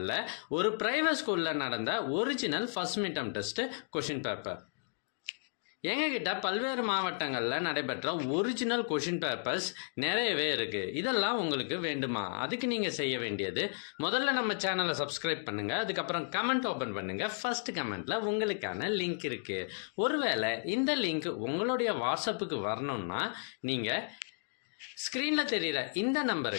ஒரு பிரைவேட் ஸ்கூலில் நடந்த original first midterm test question paper. எங்ககிட்ட பல்வேறு மாவட்டங்களில் நடைபெற்ற ஒரிஜினல் கொஷின் பேப்பர்ஸ் நிறையவே இருக்குது. இதெல்லாம் உங்களுக்கு வேண்டுமா? அதுக்கு நீங்கள் செய்ய வேண்டியது, முதல்ல நம்ம சேனலை சப்ஸ்கிரைப் பண்ணுங்கள், அதுக்கப்புறம் கமெண்ட் ஓப்பன் பண்ணுங்கள். ஃபர்ஸ்ட் கமெண்ட்டில் உங்களுக்கான லிங்க் இருக்குது. ஒருவேளை இந்த லிங்க் உங்களுடைய வாட்ஸ்அப்புக்கு வரணும்னா நீங்கள் ஸ்க்ரீனில் தெரிகிற இந்த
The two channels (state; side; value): silent; right; digital silence